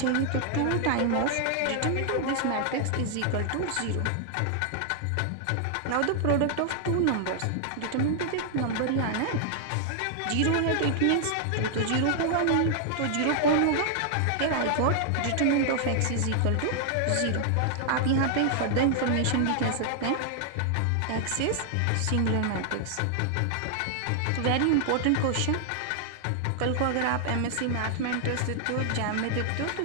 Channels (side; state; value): both; different; correlation 0.00